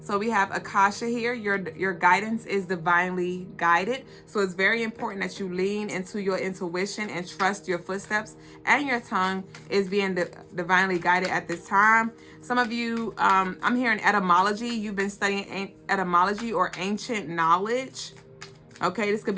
so we have Akasha here. Your guidance is divinely guided, so it's very important that you lean into your intuition and trust your footsteps, and your tongue is being divinely guided at this time. Some of you, I'm hearing etymology. You've been studying etymology or ancient knowledge. Okay, this could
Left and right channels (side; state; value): both; identical; correlation 1.00